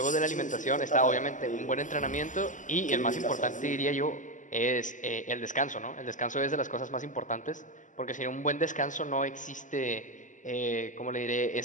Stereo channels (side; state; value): right; late; 0.37 ms